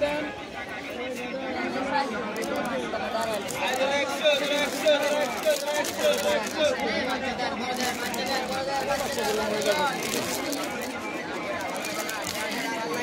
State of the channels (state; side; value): identical; both; correlation 1.00